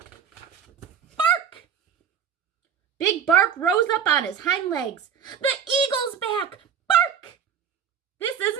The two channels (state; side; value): quieter; left; 7.8 dB